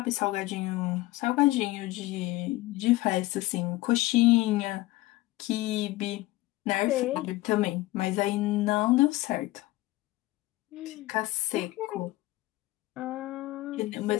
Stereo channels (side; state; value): right; quieter; 18.4 dB